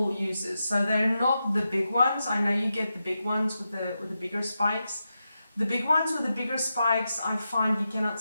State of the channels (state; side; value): inverted; both; correlation -0.88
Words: uses. So they're not the big ones. I know you get the big ones with the bigger spikes. The big ones with the bigger spikes, I find you cannot